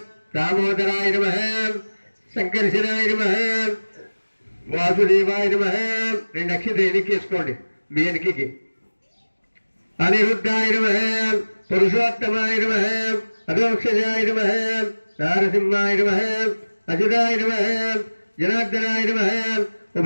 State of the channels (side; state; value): both; inverted; correlation -1.00